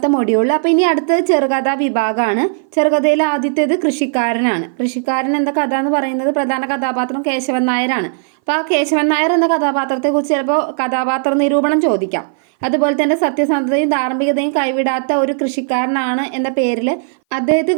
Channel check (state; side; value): silent; left; 60 dB below the other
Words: മൊഡ്യൂൾ. അപ്പോൾ ഇനി അടുത്തത് ചെറുകഥാ വിഭാഗമാണ്. ചെറുകഥയിലെ ആദ്യത്തേത് കൃഷിക്കാരനാണ്. കൃഷിക്കാരൻ എന്ന കഥ എന്ന് പറയുന്നത് പ്രധാന കഥാപാത്രം കേശവൻ നായരാണ്. അപ്പോൾ ആ കേശവൻ നായർ എന്ന കഥാപാത്രത്തെക്കുറിച്ച് ചിലപ്പോൾ കഥാപാത്ര നിരൂപണം ചോദിക്കാം. അതുപോലെ തന്നെ സത്യസന്ധതയും ധാർമ്മികതയും കൈവിടാത്ത ഒരു കൃഷിക്കാരനാണ് എന്ന പേരിൽ